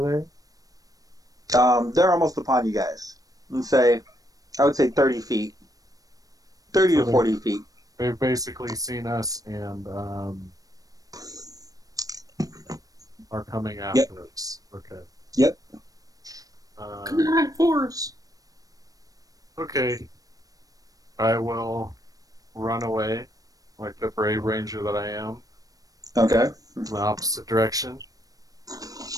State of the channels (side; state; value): left; late; 0.18 ms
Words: they? They're almost upon you guys. I would say 30 feet. 30 So to 40 feet. They've basically seen us and are coming after us. Okay. Yep. Good night, force. Okay. I will run away, like the brave ranger that I am, Okay. in the opposite direction.